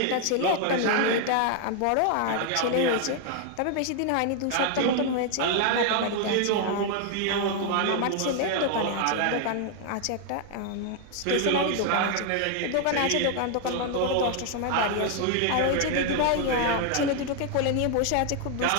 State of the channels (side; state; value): both; different; correlation 0.00